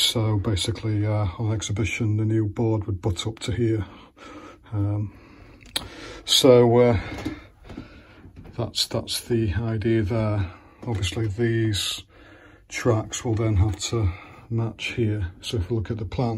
basically on exhibition the new board would butt up to here. That's the idea there. Obviously these tracks will then have to match here. So if we look at the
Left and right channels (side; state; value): both; identical; correlation 1.00